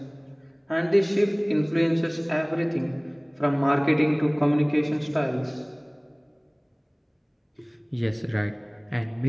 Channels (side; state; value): both; identical; correlation 1.00